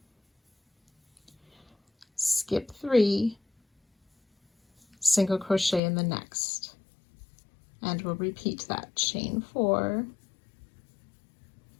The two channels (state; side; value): drops out; right; at 5.8 s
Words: skip 3, single crochet in the next, and we'll repeat that. Chain 4,